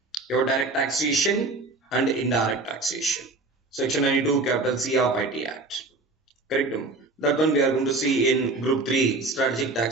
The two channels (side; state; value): left; quieter; 3.3 dB